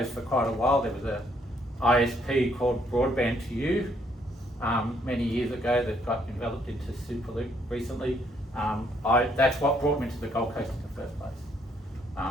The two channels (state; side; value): normal; both; correlation 0.69